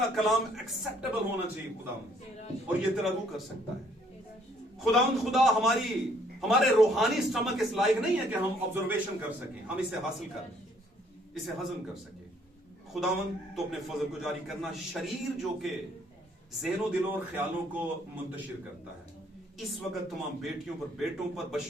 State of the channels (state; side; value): normal; both; correlation 0.64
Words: कलाम एक्सेप्टेबल होना चाहिए खुदावंद, और ये तेरा रूह कर सकता है। खुदावंद, खुदा हमारे रूहानी स्टमक इस लायक नहीं है कि हम ऑब्जर्वेशन कर सकें, हम इसे हासिल कर इसे हजम कर सके। खुदावंद, तो अपने फजल को जारी करना। शरीर जो के ज़हनो दिलों और ख्यालों को मुंतशिर करता है, इस वक्त तमाम बेटियों पर, बेटों पर,